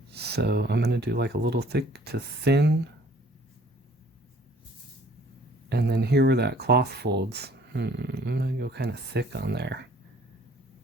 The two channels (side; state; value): both; normal; correlation 0.56